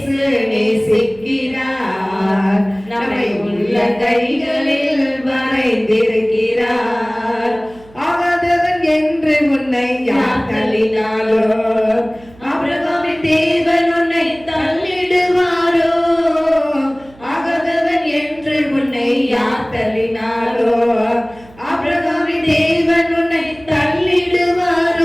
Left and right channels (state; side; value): noise; right; hum, 24 dB below the sound